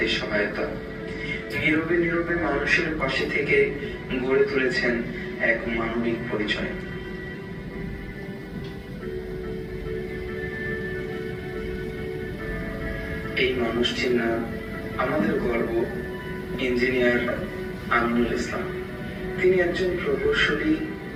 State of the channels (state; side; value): identical; both; correlation 1.00